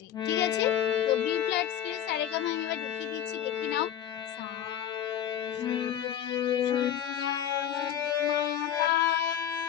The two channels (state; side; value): quieter; right; 10.2 dB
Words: ঠিক আছে? তো বি ফ্ল্যাট স্কেল সারেগামা আমি এবার দেখিয়ে দিচ্ছি, দেখে নাও। সা